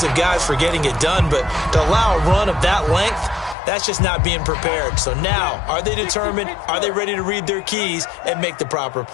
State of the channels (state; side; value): drops out; right; at 3.6 s